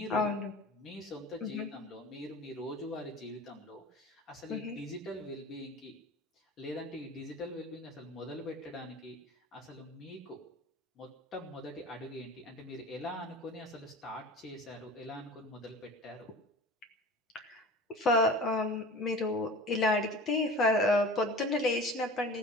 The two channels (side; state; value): both; normal; correlation 0.38